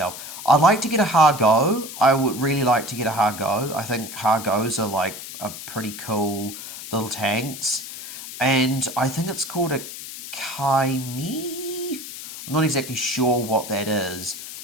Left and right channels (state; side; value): noise; left; hiss, 11 dB below the sound